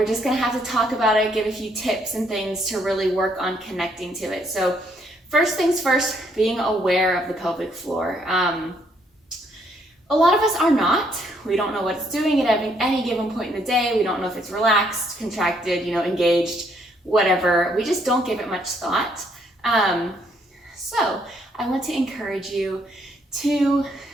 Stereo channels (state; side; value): normal; both; correlation 0.70